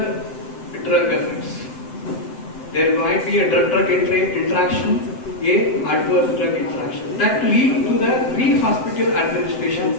drug effects. There might be a drug interaction, a adverse drug interaction that lead to the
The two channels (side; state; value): right; late; 7.8 ms